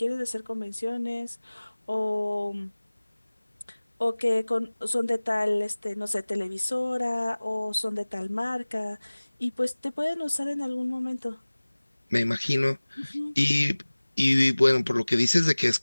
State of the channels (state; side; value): inverted; both; correlation -1.00